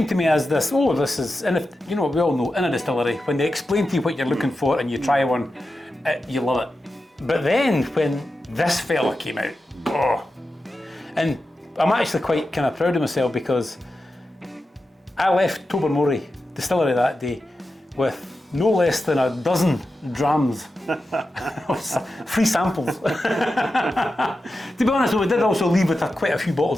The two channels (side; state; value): both; normal; correlation 0.91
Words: to me as this is, and if you know, we all know in a distillery, when they explain to you what you're looking for and you try one, you love it. But then when this fella came out, and I'm actually quite kind of proud of myself, because I left Tobermory Distillery that day with no less than a dozen drams of free samples. To be honest, we did also leave with quite a few